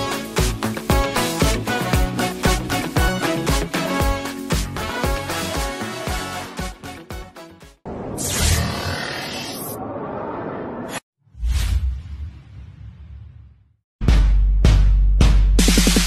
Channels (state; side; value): identical; both; correlation 1.00